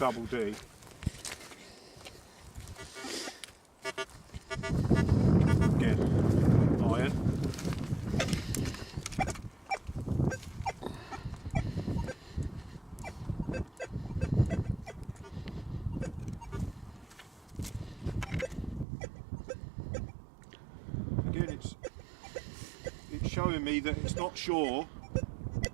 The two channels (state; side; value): drops out; left; at 18.9 s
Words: D. Again, iron. It's showing me that it's not sure